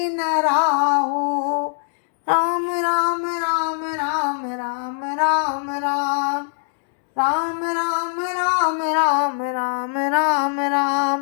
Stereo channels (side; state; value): right; silent; digital silence